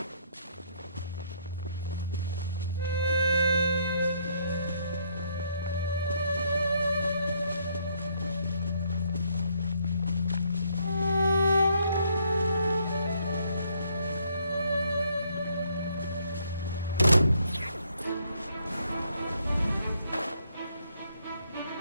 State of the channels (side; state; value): both; inverted; correlation -0.69